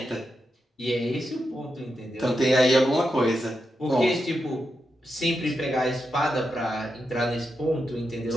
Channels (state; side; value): normal; both; correlation 0.86